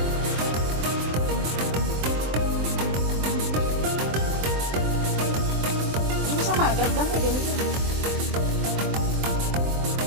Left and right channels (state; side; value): late; left; 23 ms